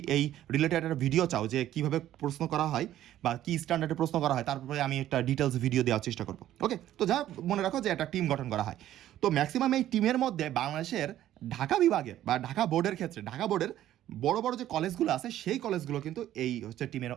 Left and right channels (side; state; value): left; quieter; 12.7 dB